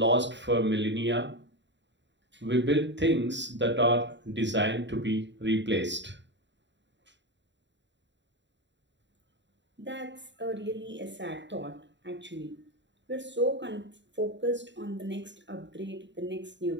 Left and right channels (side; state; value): left; late; 0.52 ms